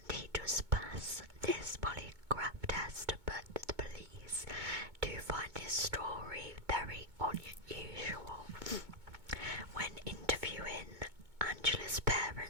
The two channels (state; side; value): late; left; 2.2 ms